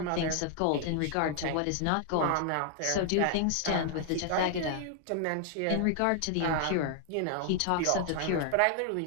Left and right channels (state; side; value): different; both; correlation 0.00